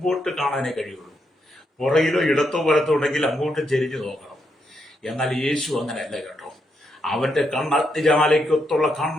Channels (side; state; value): both; normal; correlation 0.80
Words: കാണാനേ കഴിയുള്ളൂ. പുറകിലോ ഇടത്തോ വലത്തോ ഉണ്ടെങ്കിൽ അങ്ങോട്ട് ചെരിഞ്ഞു നോക്കണം. എന്നാൽ യേശു അങ്ങനെയല്ല കേട്ടോ. അവന്റെ കണ്ണ് അഗ്നിജ്വാലയ്ക്കൊത്തുള്ള